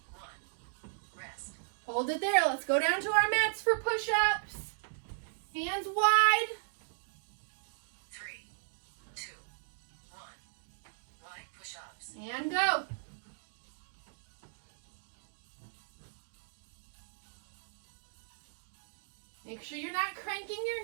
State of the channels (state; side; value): silent; left; digital silence